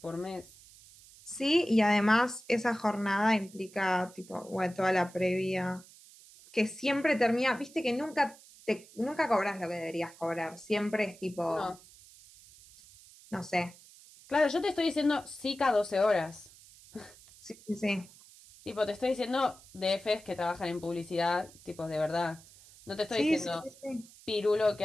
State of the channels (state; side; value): noise; right; hiss, 22 dB below the sound